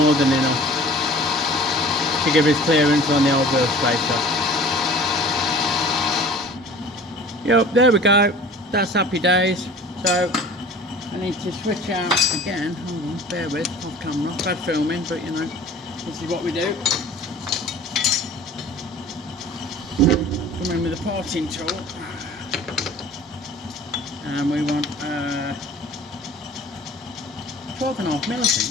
than enough to give us clearance on the old wheel spacer. Yep, there we go. That's happy days. So I need to switch out again. Hold on, bear with, off camera. Bad filming, but you know, this is what we do. Come in with a parting tool. And we want 12.5 mil, I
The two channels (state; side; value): normal; both; correlation 0.45